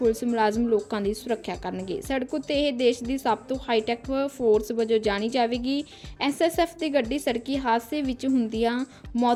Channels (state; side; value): identical; both; correlation 1.00